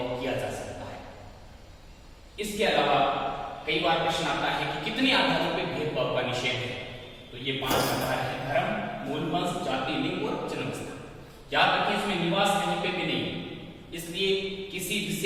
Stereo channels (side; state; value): both; identical; correlation 1.00